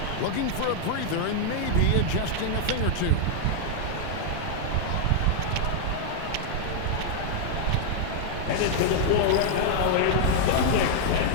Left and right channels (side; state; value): both; different; correlation -0.01